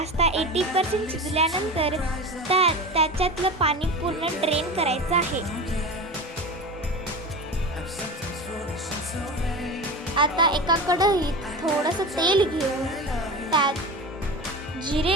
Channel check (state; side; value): normal; both; correlation 0.28